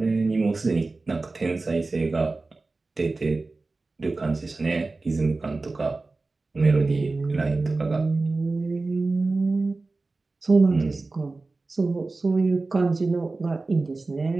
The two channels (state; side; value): quieter; left; 3.5 dB